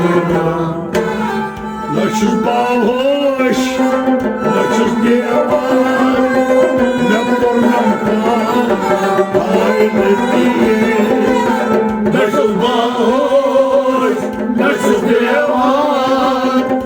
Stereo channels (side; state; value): both; identical; correlation 1.00